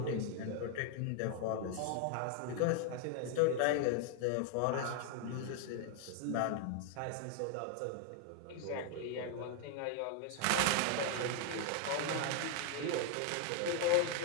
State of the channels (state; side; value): different; both; correlation 0.00